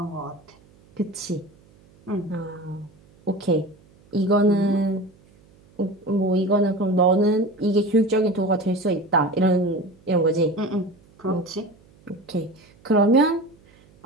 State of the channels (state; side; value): noise; right; hum, 29 dB below the sound